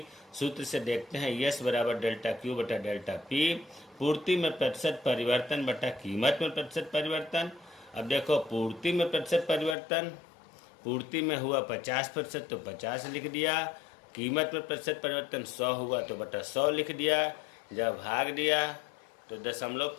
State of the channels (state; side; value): drops out; right; at 9.8 s